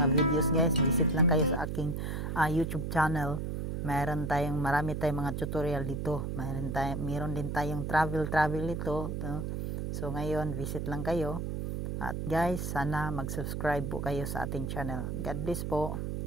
videos guys, visit lang kayo sa aking YouTube channel. Marami tayong mga tutorial dito. Meron din tayong travel dito, no? So ngayon, visit lang kayo. At guys, sana mag-subscribe po kayo sa ating channel. God bless po.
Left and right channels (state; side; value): noise; right; hum, 3 dB below the sound